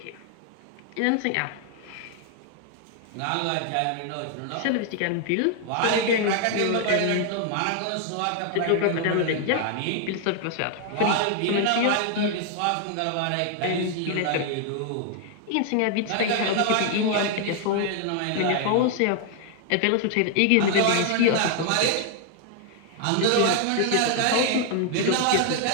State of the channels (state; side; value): different; both; correlation 0.00